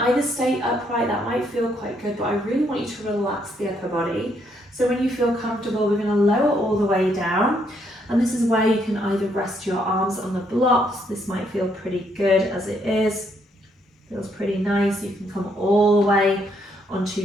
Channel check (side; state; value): both; normal; correlation 0.73